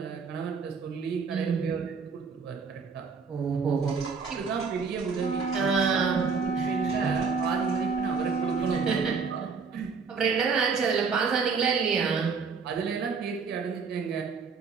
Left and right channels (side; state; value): left; quieter; 5.3 dB